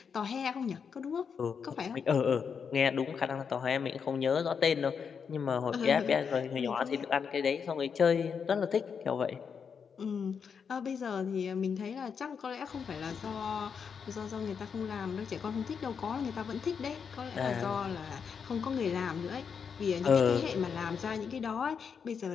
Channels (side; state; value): right; quieter; 6.5 dB